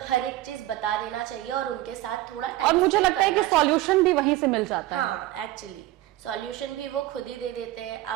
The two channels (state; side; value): quieter; left; 15.9 dB